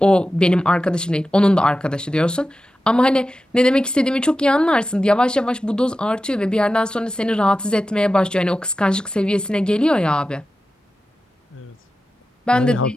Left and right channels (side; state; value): both; normal; correlation 0.93